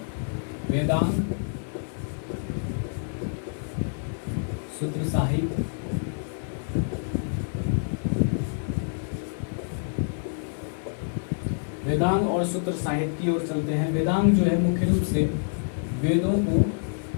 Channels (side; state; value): right; silent; digital silence